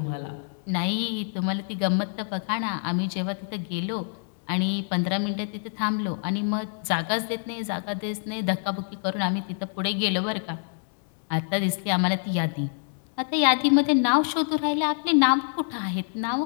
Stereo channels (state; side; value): silent; right; digital silence